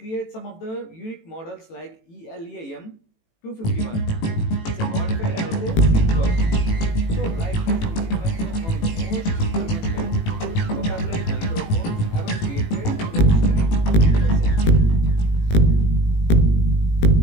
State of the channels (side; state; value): right; late; 18 ms